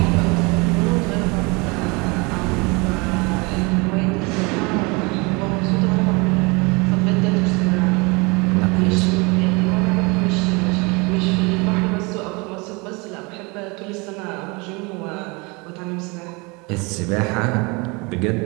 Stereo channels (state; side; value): quieter; left; 27.8 dB